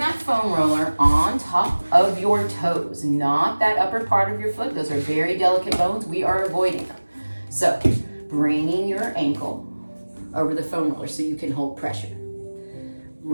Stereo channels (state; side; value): inverted; both; correlation -1.00